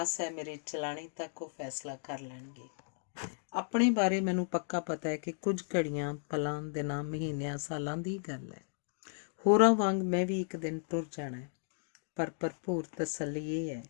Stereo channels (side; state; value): right; silent; digital silence